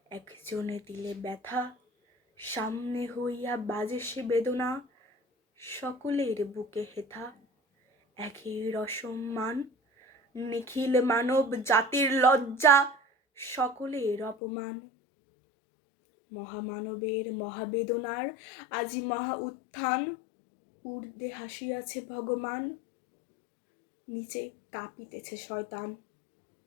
একজনে দিলে ব্যথা, সামনে হইয়া বাজে সে বেদনা, সকলের বুকে হেথা একের অসম্মান। নিখিল মানব জাতির লজ্জা, সকলের অপমান। মহামানবের মহাবেদনার আজি মহা উত্থান, ঊর্ধ্বে হাসিয়াছে ভগবান, নিচে কাঁপিতেছে শয়তান।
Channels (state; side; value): drops out; right; at 14.4 s